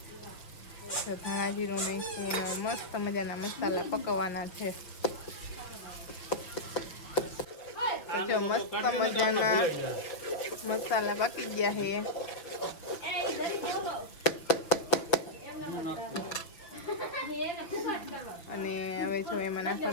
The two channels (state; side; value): late; right; 6.3 ms